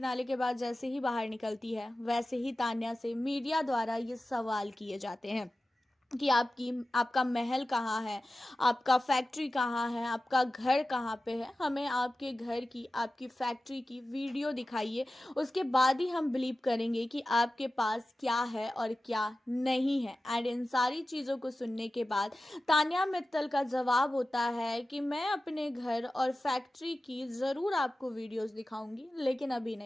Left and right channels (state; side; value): normal; both; correlation 0.95